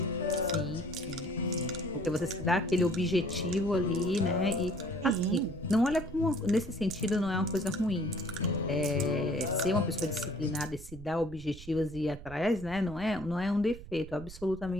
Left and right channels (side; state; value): right; noise; rumble, 15 dB below the sound